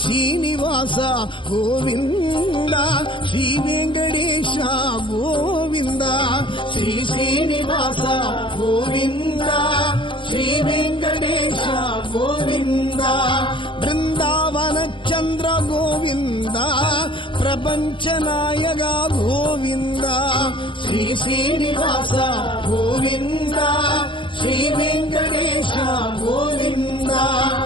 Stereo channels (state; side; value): late; right; 0.24 ms